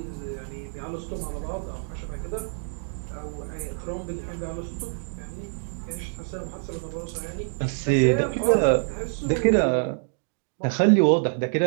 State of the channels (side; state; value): left; silent; digital silence